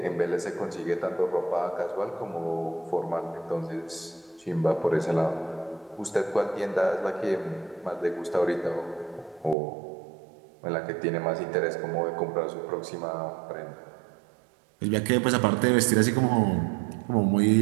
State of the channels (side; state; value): left; drops out; at 9.6 s